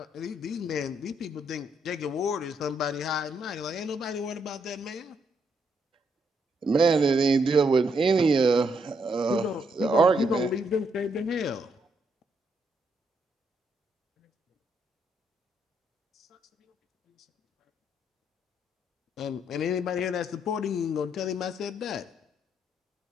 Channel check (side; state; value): both; normal; correlation 0.75